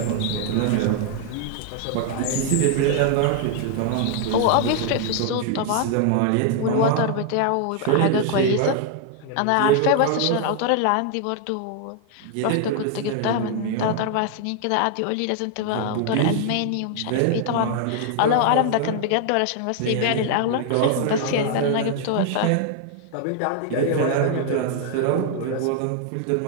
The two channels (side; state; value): both; different; correlation 0.00